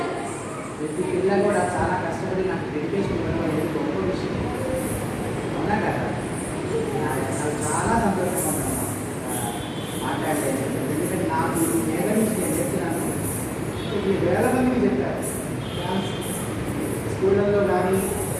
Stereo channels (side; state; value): both; identical; correlation 1.00